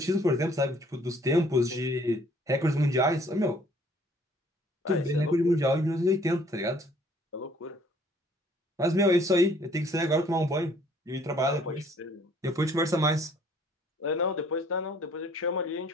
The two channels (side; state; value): both; normal; correlation 0.59